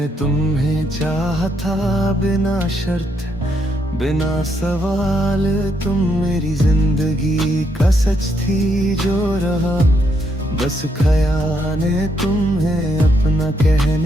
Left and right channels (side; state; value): both; normal; correlation 0.76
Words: तुम्हें चाहा था बिना शर्त बिना सवाल। तुम मेरी जिंदगी का सच थी जो रहा बस ख्याल ने। तुम्हें अपना